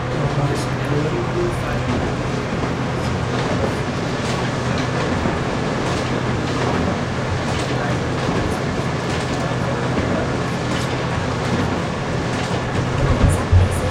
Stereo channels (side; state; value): both; identical; correlation 1.00